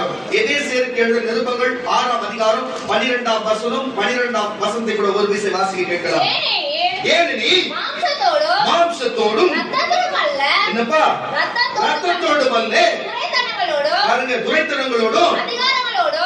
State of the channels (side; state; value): both; identical; correlation 1.00